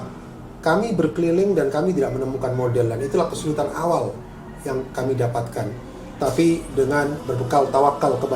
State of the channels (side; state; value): both; identical; correlation 1.00